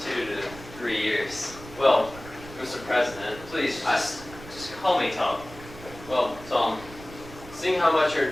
2 to 3 years? Well, Mr. President, Please, just call me Tom. well, Tom, seeing how much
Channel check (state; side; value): noise; right; rumble, 16 dB below the sound